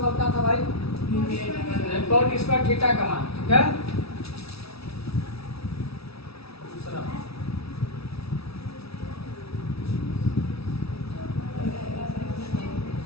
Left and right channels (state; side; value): late; right; 0.77 ms